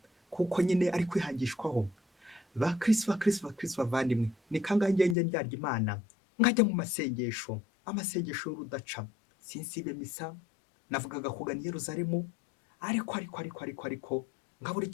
kuko nyine ari kwihangishwaho. Bakristo bavandimwe, ni kangahe ngenge ndyarya Imana nkajya mu masengesho, amasengesho y'urudaca, sinsibe misa, navugaga kugana i Yerusalemu, ariko ngabura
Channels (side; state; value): right; drops out; at 5.2 s